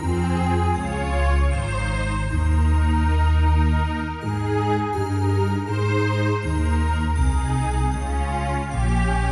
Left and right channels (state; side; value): identical; both; correlation 1.00